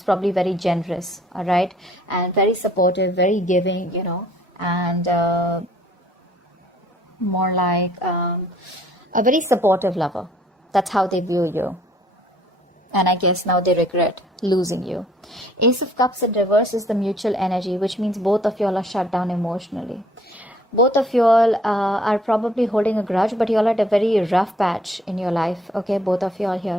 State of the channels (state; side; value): normal; both; correlation 0.59